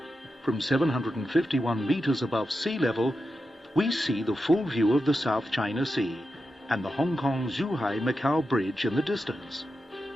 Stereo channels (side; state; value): both; normal; correlation 0.89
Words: From 751 meters above sea level, we see the full view of the South China Sea and the Hong Kong-Zhuhai-Macau Bridge in the distance.